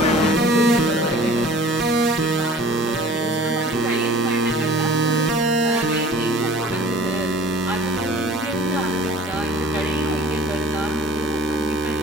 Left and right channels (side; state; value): both; normal; correlation 0.46